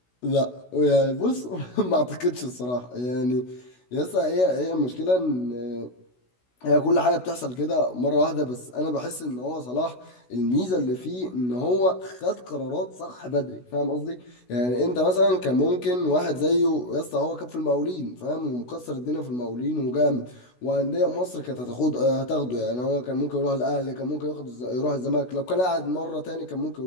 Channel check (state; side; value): late; right; 16 ms